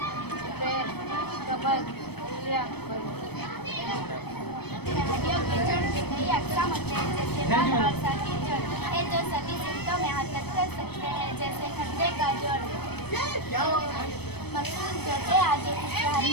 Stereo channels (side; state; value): right; late; 0.97 ms